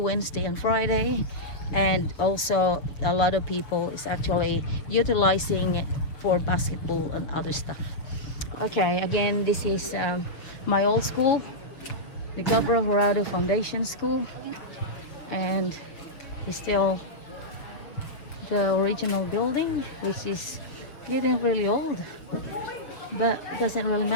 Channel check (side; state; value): right; late; 6.4 ms